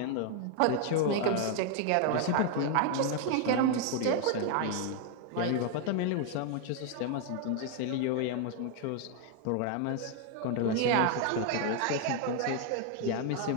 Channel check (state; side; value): different; both; correlation 0.00